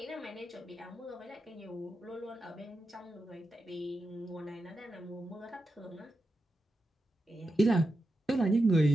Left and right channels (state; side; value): normal; both; correlation 0.89